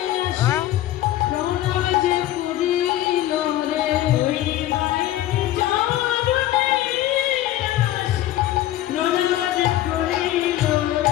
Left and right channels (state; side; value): quieter; right; 14.0 dB